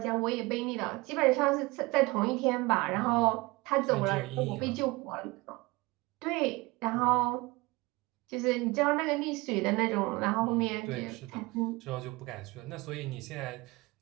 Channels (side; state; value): left; quieter; 23.2 dB